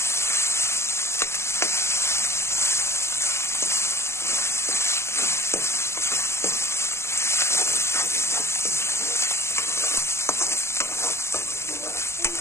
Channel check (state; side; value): late; right; 0.13 ms